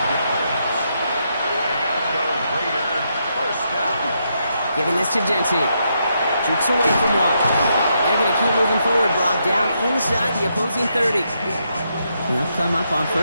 Giving this to Genty. Jukes away from one. They're going to keep moving forward, Brock, down inside the opposing 30. They'll come up on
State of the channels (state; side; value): inverted; both; correlation -0.79